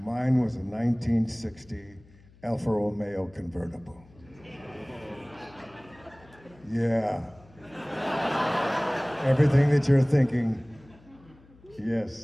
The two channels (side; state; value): left; noise; hum, 26 dB below the sound